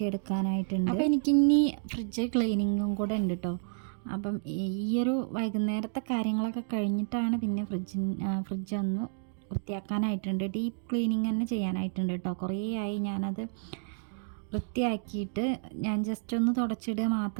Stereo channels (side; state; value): left; silent; digital silence